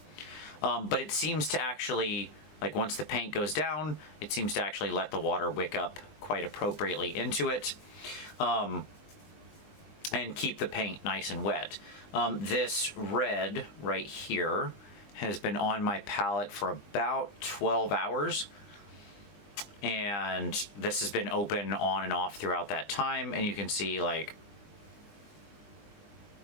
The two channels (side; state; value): right; late; 20 ms